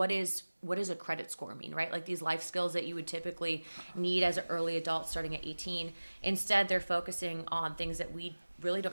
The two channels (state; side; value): inverted; both; correlation -1.00